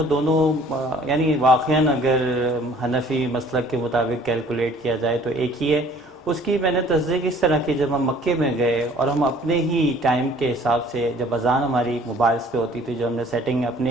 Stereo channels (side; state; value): both; normal; correlation 0.54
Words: دونوں یعنی واقعاً اگر حنفی مسلک کے مطابق کیلکولیٹ کیا جائے تو ایک ہی ہے. اس کی میں نے تصدیق اس طرح کی، جب ہم مکے میں گئے اور ہم اپنے ہی ٹائم کے حساب سے، جب اذان ہماری موبائلز پہ ہوتی تھی، جو ہم نے سیٹنگ